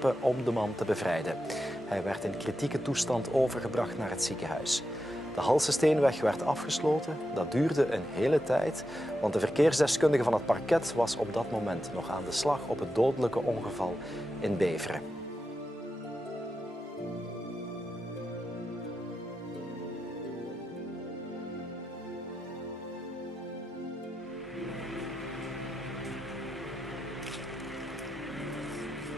om de man te bevrijden. Hij werd in kritieke toestand overgebracht naar het ziekenhuis. De Halsesteenweg werd afgesloten. Dat duurde een hele tijd, want de verkeersdeskundige van het parket was op dat moment nog aan de slag op het dodelijke ongeval in Beveren.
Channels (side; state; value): both; normal; correlation 0.88